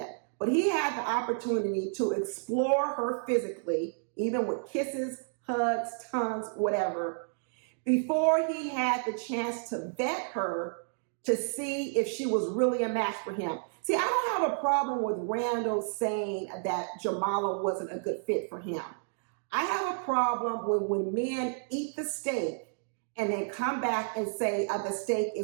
But he had the opportunity to explore her physically, even with kisses, hugs, tongues, whatever, before he had the chance to vet her to see if she was really a match for him. See, I don't have a problem with Randall saying that Jamala wasn't a good fit for him. I have a problem when men eat the steak and then come back and say the steak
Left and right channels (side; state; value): left; silent; digital silence